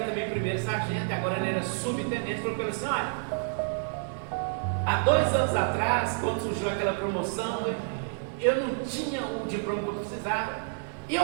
também primeiro sargento, agora ele era subtenente, falou para ele assim, olha, há 2 anos atrás, quando surgiu aquela promoção, eu não tinha o diploma que eu precisava, e eu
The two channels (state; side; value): silent; left; 59 dB below the other